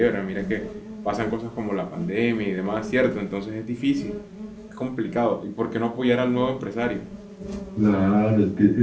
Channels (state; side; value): identical; both; correlation 1.00